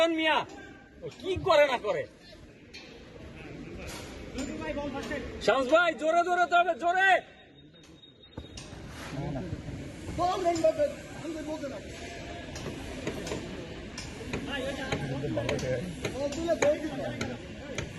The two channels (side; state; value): both; identical; correlation 1.00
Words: মিয়া, কি করে না করে। শামস ভাই জোরে দৌড়াতে হবে, জোরে।